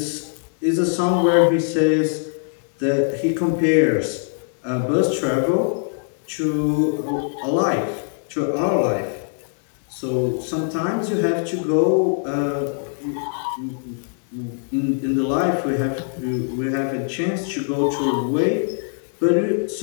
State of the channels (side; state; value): right; silent; digital silence